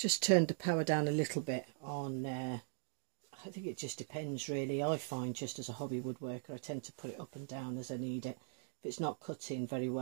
turned the power down a little bit on, I think it just depends really. I find just as a hobby woodworker I tend to put it up and down as I need it. If it's not cutting very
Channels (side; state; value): left; silent; digital silence